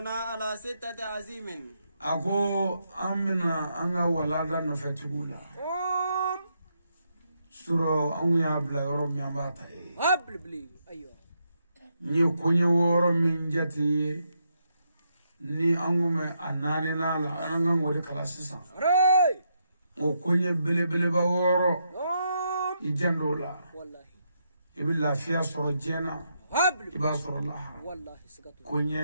على 6 عزيم أكو أمنا أنغا ولادا نفتولا سورة أنغا بلا يوم يامباتا بلي أيوة ني كوني ورو من جاتي ني أنغم أناني نالا أنغا ودي كلاسيسا o konye bele bele ba woro ijandula wallahi ibilla fiya soro jena iba soro la wallahi sikatu kunye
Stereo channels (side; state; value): both; inverted; correlation -0.80